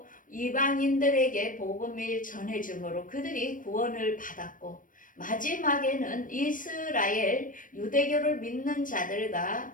이방인들에게 복음을 전해줌으로 그들이 구원을 받았고, 마지막에는 이스라엘 유대교를 믿는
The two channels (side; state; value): right; late; 0.39 ms